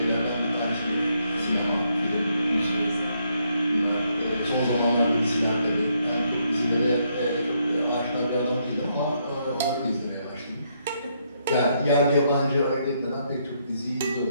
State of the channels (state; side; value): inverted; both; correlation -0.75